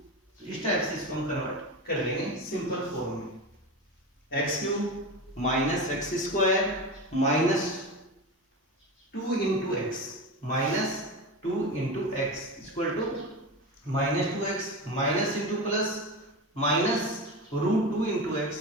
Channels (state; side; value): normal; both; correlation 0.24